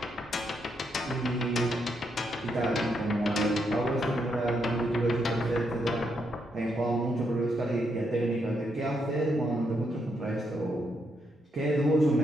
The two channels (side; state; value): both; normal; correlation 0.78